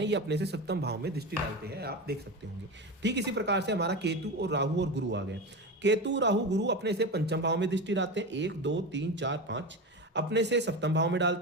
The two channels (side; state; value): both; normal; correlation 0.23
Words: ये अपने से सप्तम भाव में दृष्टि डालते हैं, आप देख सकते होंगे। ठीक इसी प्रकार से हमारा केतु और राहु और गुरु आ गए। केतु राहु गुरु अपने से पंचम भाव में दृष्टि डालते हैं 1 2 3 4 5। अपने से सप्तम भाव में